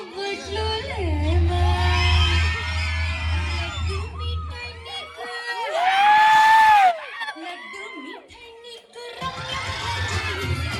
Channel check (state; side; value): identical; both; correlation 1.00